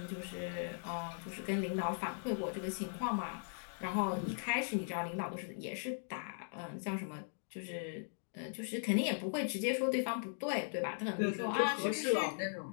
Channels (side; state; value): right; silent; digital silence